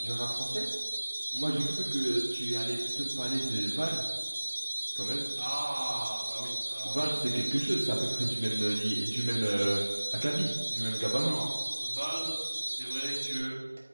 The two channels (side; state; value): both; inverted; correlation -1.00